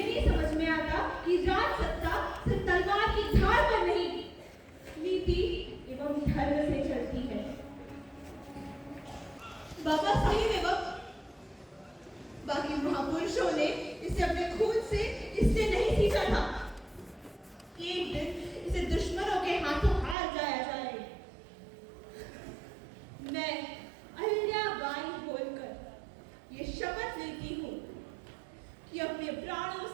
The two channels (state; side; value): drops out; left; at 20.2 s